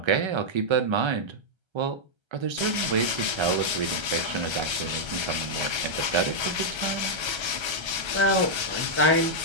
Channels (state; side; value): late; left; 1.3 ms